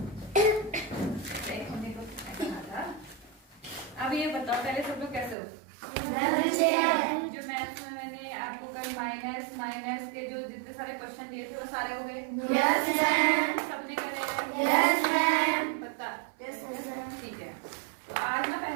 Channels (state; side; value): drops out; left; at 5.4 s